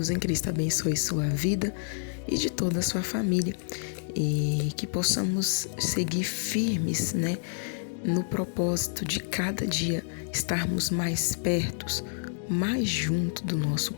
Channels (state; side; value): silent; right; digital silence